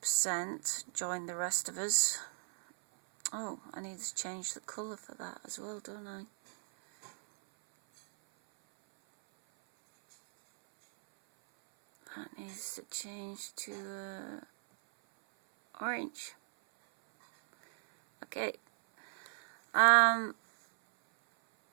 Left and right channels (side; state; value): left; silent; 54 dB below the other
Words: joined the rest of us. Oh, I need to change the colour for that as well, don't I? That needs to change to orange. Okay.